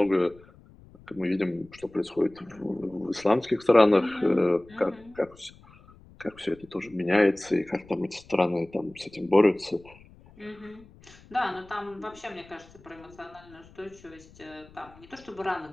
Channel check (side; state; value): left; noise; rumble, 24 dB below the sound